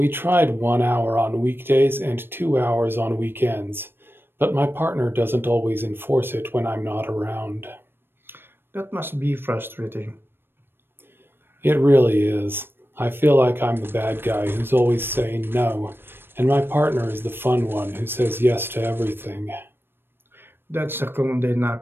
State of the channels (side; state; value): left; late; 0.10 ms